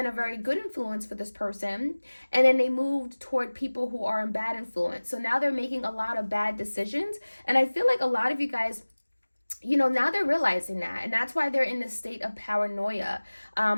a very good influence for this person. And then they moved toward people who are in bad influence. So now they're making a lot of bad decisions. And I feel like a lot of you guys, now they're realizing that, and that's why they're in this state of paranoia,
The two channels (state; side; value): inverted; both; correlation -1.00